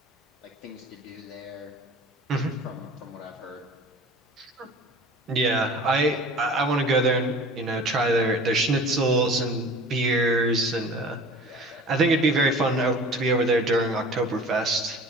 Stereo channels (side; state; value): both; normal; correlation 0.43